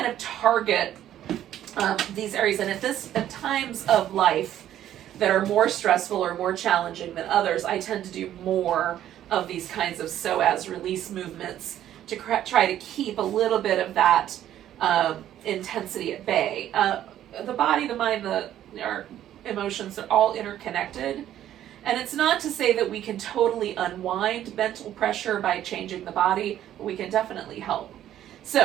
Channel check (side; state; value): left; quieter; 11.7 dB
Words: of target these areas. And at times of life that are more stressful or more challenging than others, I tend to do more of these kinds of psoas release movements to try to keep a little bit of that intensity at bay. The body, the mind, our emotions are all interconnected. And it's not to say that we can totally unwind mental pressure by changing the body, but we can definitely help.